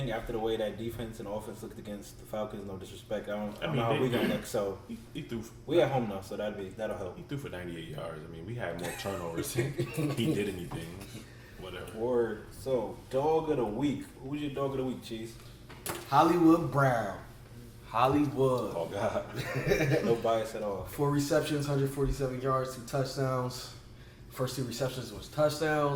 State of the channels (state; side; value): identical; both; correlation 1.00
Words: after the way that defense and offense looked against the Falcons. No disrespect, I don't know how we gonna look. So He threw. we at home now, so that'll help. He threw for 98 yards. I mean, we had more turnovers. He did anything. Whatever. Word. So dog of the week. Who's your dog of the week, Cheese? Hollywood Brown. Hollywood. Oh God. No bias at all. 4 receptions, 147 yards, 2 touchdowns. First 2 receptions was